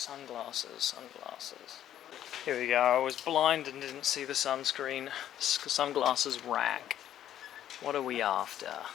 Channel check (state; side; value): quieter; right; 11.3 dB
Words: Here we go. I was blind and didn't see the sunscreen. Sunglasses rack. What are we after?